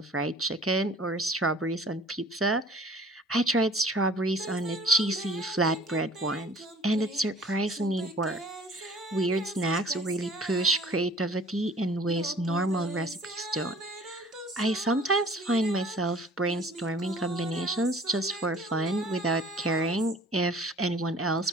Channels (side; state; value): both; normal; correlation 0.50